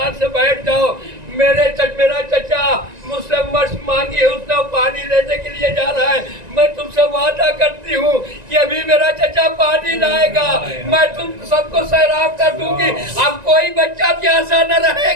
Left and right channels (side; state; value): left; late; 1.9 ms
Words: से बैठ जाओ, मेरा चचा मुझसे मशक मांगी है, उसने पानी लेने के लिए जा रहा है, मैं तुमसे वादा करती हूँ कि अभी मेरा चचा पानी लाएगा, मैं तुम सबको सैराब कर दूंगी, अब कोई बच्चा प्यासा न